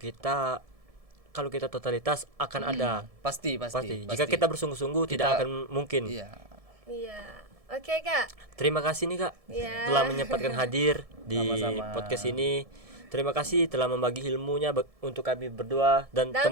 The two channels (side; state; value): left; late; 1.7 ms